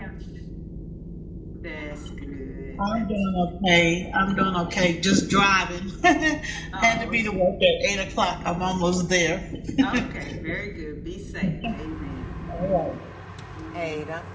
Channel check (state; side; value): identical; both; correlation 1.00